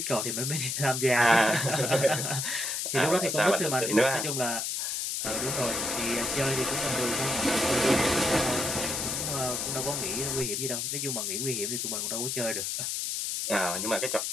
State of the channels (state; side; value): noise; left; hiss, 1 dB below the sound